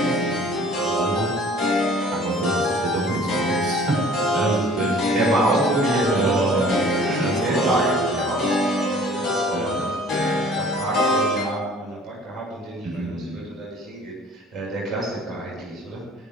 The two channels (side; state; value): both; normal; correlation 0.51